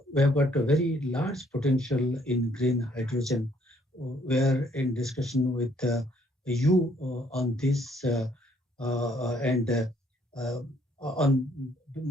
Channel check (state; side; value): normal; both; correlation 0.65